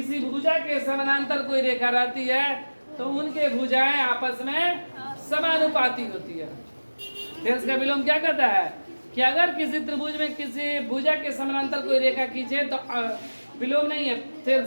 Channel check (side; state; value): both; inverted; correlation -1.00